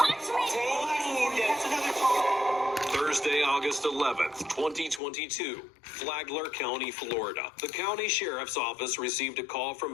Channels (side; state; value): right; drops out; at 5.0 s